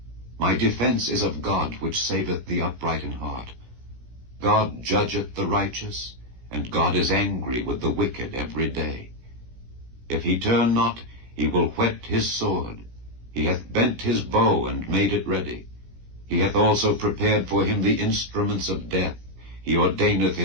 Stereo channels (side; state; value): left; late; 16 ms